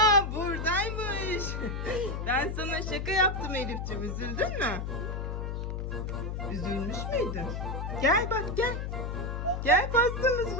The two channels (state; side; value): noise; left; hum, 3 dB below the sound